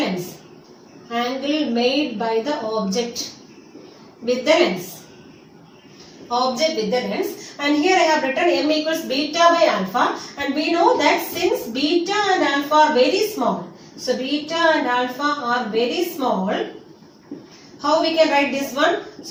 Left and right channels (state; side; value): identical; both; correlation 1.00